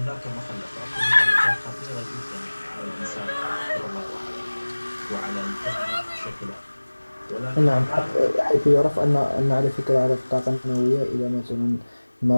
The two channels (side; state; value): both; inverted; correlation -1.00